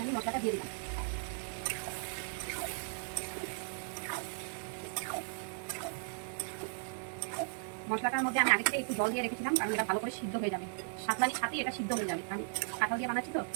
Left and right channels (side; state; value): left; silent; digital silence